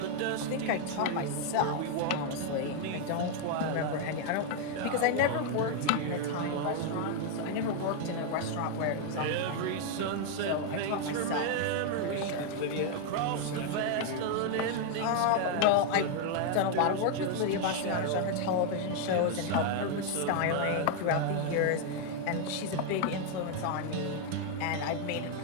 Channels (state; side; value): different; both; correlation 0.00